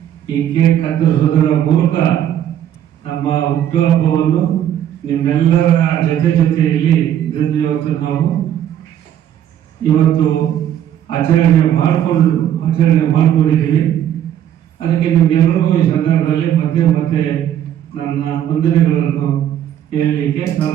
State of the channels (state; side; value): quieter; left; 10.6 dB